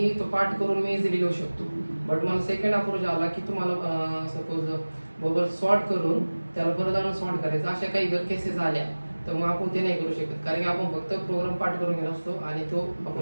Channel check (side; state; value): both; inverted; correlation -1.00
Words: तो पाठ करून मी इझिली लिहू शकतो बट मला सेकंड अप्रोच आला की तुम्हाला सपोज बबल सॉर्ट करून त्याला परत आणून सॉर्ट करायचं अशा काही जर केसेस आल्या तर मग आपण ते नाही करू शकत कारण की आपण फक्त प्रोग्राम पाठ करून घेत असतो आणि तो